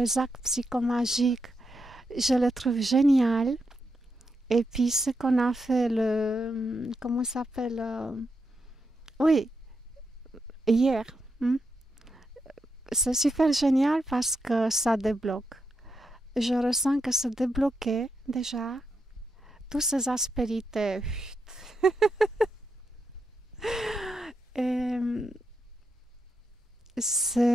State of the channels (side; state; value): both; normal; correlation 0.84